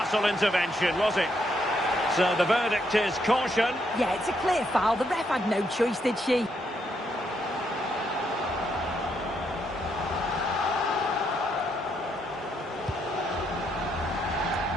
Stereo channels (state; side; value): normal; both; correlation 0.76